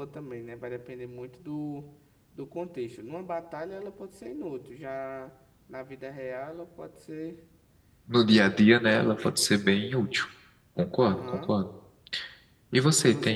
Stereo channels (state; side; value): identical; both; correlation 1.00